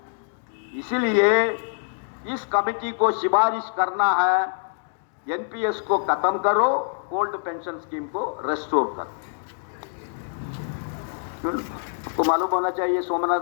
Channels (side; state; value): right; silent; digital silence